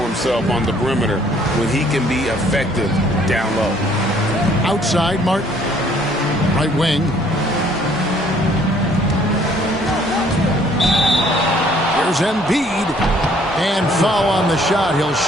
himself on the perimeter when he can be effective down low. Outside, Martin. Right wing. Here's Embiid. And foul on the shot. He'll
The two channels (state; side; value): normal; both; correlation 0.61